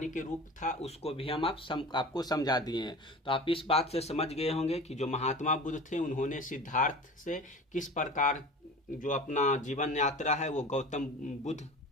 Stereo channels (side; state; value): both; normal; correlation 0.37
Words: के रूप था उसको भी हम आपको समझा दिए हैं। तो आप इस बात से समझ गए होंगे कि जो महात्मा बुद्ध थे उन्होंने सिद्धार्थ से किस प्रकार जो अपना जीवन यात्रा है वो गौतम बुद्ध